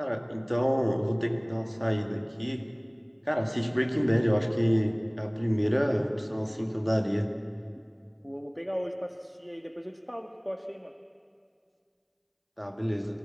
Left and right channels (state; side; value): identical; both; correlation 1.00